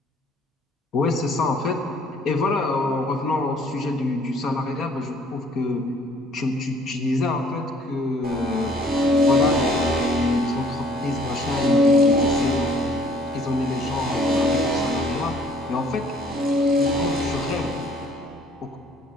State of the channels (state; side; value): normal; both; correlation 0.58